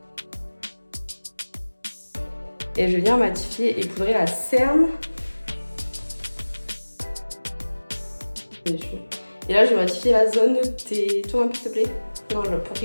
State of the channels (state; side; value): inverted; both; correlation -1.00